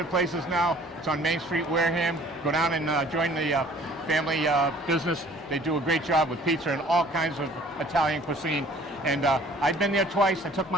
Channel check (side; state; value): both; normal; correlation 0.53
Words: places now. It's on Main Street, Wareham. Go down and join the family business. They do a great job with pizza and all kinds of Italian cuisine. And I've been there twice. I took